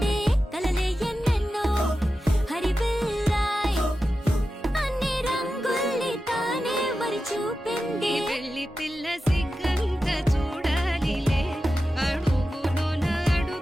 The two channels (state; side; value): normal; both; correlation 0.92